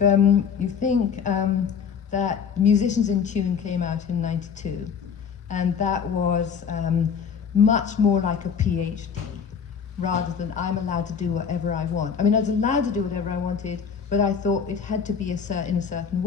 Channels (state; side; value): quieter; right; 6.8 dB